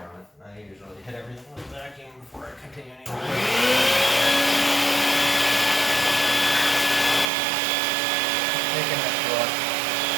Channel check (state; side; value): drops out; left; at 7.3 s